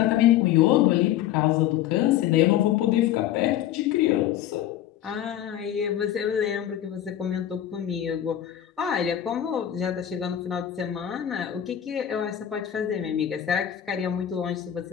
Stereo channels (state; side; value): quieter; right; 11.4 dB